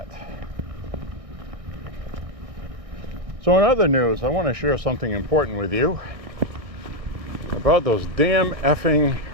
So in other news, I want to share something important with you about those damn effing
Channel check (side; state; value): left; late; 1.6 ms